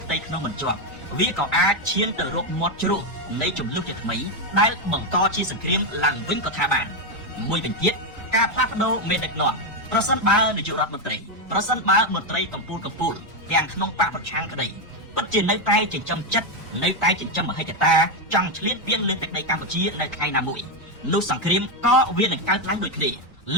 ផ្ទៃក្នុងមិនជាប់វាក៏អាចឈានទៅរកមាត់ជ្រោះនៃចំនួនជាថ្មីដែលបង្កជាសង្គ្រាមឡើងវិញក៏ថាបានមួយវិញទៀតការផ្លាស់ប្ដូរមេដឹកនាំប្រសិនបើនាយករដ្ឋមន្ត្រីប្រសិនបើមន្ត្រីកម្ពុជាទាំងក្នុងបកប្រឆាំងក្តីពិតជានៅតែចិញ្ចឹមចិត្តនៅតែចិញ្ចឹមមហិច្ឆតាចង់ឆ្លៀតពៀនលើទឹកដីកម្ពុជានៅថ្ងៃណាមួយនោះសង្គ្រាមក៏វានឹងកើតឡើងដូចគ្នា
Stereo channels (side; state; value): both; normal; correlation 0.06